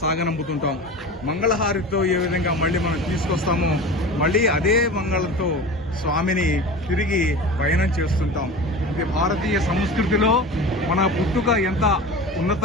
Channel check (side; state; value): both; normal; correlation 0.33